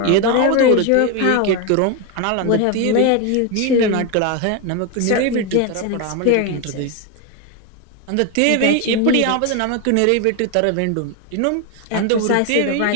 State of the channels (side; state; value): both; different; correlation 0.02